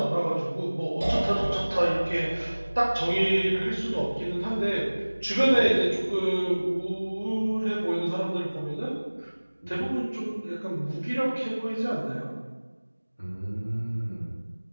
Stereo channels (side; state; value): both; inverted; correlation -1.00